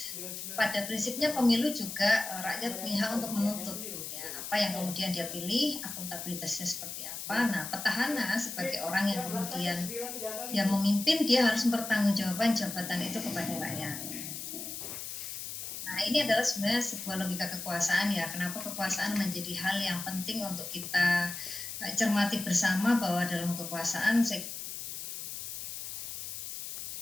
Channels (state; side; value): noise; left; hiss, 7 dB below the sound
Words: pada prinsipnya pemilu juga rakyat punya hak untuk menuntut ya, apa yang kemudian dia pilih, akuntabilitasnya seperti apa. Nah, petahana sebagai orang yang kemudian dia memimpin, dia harus mempertanggungjawabkan jabatan itu kepada rakyat. Nah, ini adalah sebenarnya sebuah logika kekuasaan ya. Kenapa kekuasaan menjadi hal yang penting untuk kita cermati bersama, bahwa dalam kekuasaan saya